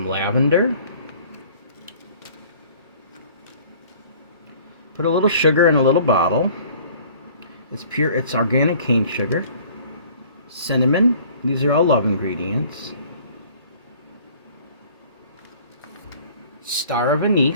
lavender. Put a little sugar in a little bottle. It's organic cane sugar. Cinnamon. These are all love ingredients. Star of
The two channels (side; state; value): both; inverted; correlation -0.52